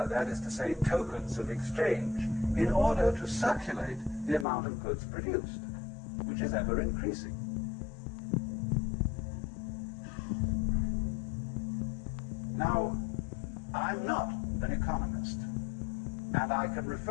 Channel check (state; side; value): drops out; right; at 4.5 s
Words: is to say, tokens of exchange, in order to circulate the amount of goods produced, which is ever increasing. Now, I'm not an economist, and I can